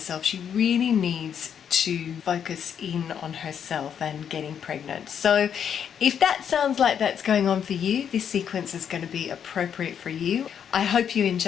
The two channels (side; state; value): right; quieter; 8.2 dB